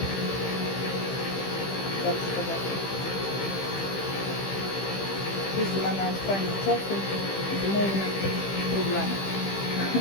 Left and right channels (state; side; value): late; right; 15 ms